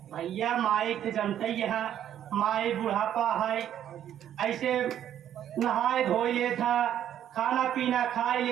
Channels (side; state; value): left; quieter; 10.6 dB